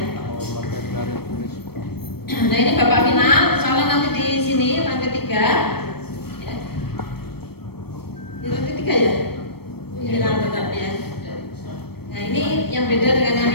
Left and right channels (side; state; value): right; late; 0.96 ms